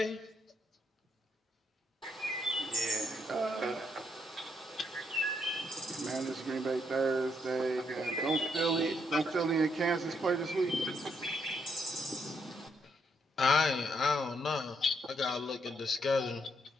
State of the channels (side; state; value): both; normal; correlation 0.75